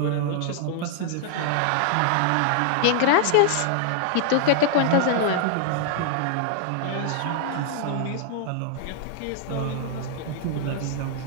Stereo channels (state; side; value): different; both; correlation -0.01